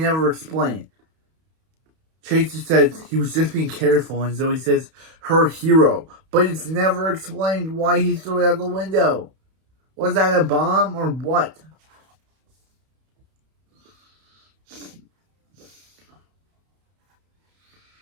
explain. Chase just says he was just being careful, and Zoe says, her hero. But it's never explained why he threw it out the window. Was that a bomb or what?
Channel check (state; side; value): late; left; 31 ms